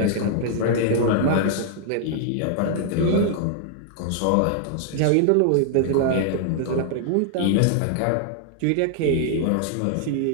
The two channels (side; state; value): both; different; correlation -0.01